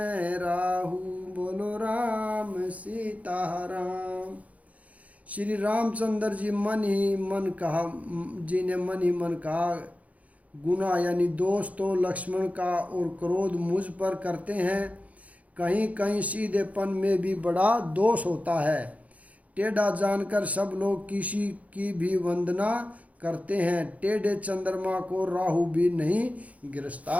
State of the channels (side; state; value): left; late; 0.069 ms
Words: राहु। बोलो राम सीताराम। श्री रामचंद्र जी ने मन ही मन कहा, गुना यानी दोष तो लक्ष्मण का और क्रोध मुझ पर करते हैं, कहीं कहीं सीधेपन में भी बड़ा दोष होता है। टेढ़ा जानकर सब लोग किसी की भी वंदना करते हैं, टेढ़े चंद्रमा को राहु भी नहीं